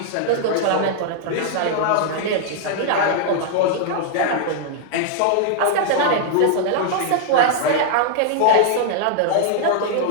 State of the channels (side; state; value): both; different; correlation 0.00